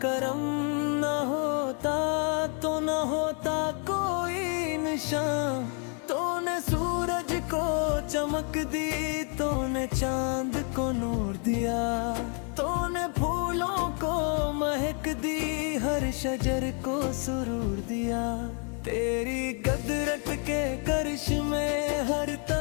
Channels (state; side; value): quieter; right; 39.8 dB